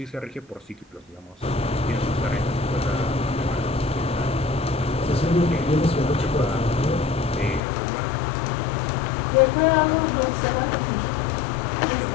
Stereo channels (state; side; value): drops out; right; at 7.6 s